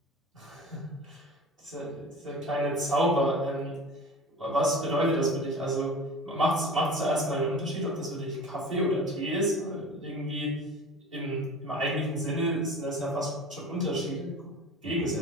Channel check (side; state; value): both; normal; correlation 0.37